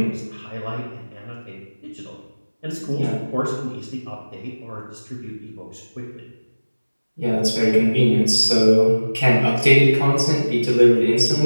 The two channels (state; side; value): inverted; both; correlation -1.00